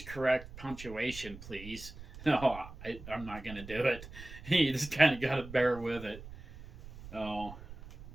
correct punctuation, please." No, I'm not gonna do it. You just kind of gotta bear with it. Oh,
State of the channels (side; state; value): right; noise; rumble, 15 dB below the sound